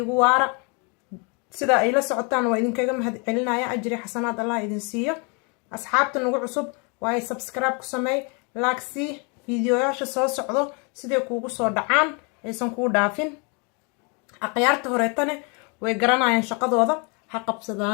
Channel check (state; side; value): quieter; right; 33.7 dB